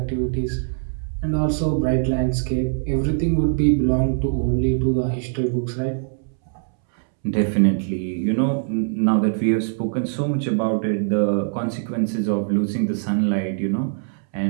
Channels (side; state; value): left; silent; 64 dB below the other